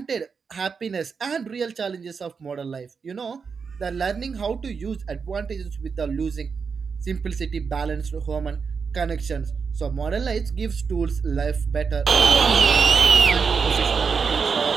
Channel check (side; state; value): left; quieter; 5.6 dB